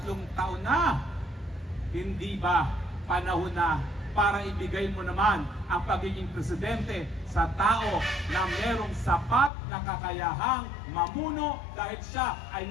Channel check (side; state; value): right; drops out; at 9.5 s